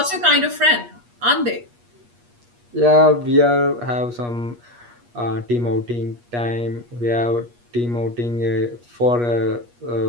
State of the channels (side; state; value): left; late; 8.4 ms